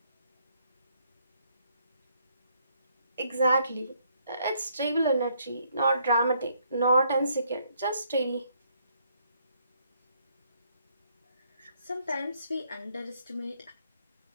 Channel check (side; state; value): both; inverted; correlation -0.70